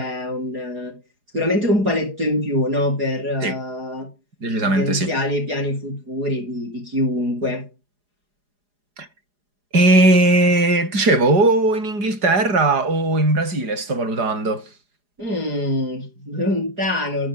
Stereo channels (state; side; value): late; left; 4.9 ms